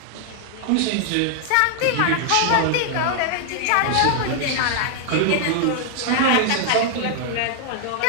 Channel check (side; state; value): both; different; correlation 0.00